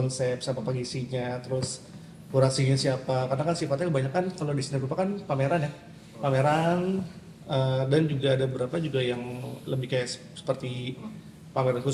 siapa pengisinya, terus kurasinya siapa, karena kan sifatnya kebanyakan kalau di seni rupa kan pameran ya, pameran dan juga ada beberapa juga yang lebih kayak seperti pameran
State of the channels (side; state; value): both; identical; correlation 1.00